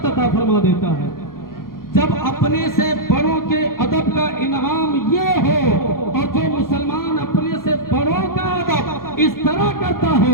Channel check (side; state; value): right; late; 0.92 ms